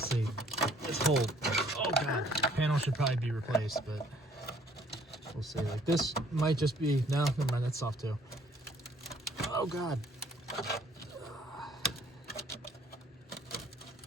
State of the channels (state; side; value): normal; both; correlation 0.60